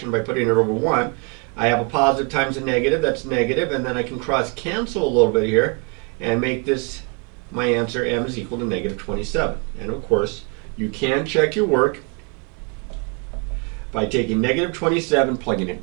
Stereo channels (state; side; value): quieter; left; 34.0 dB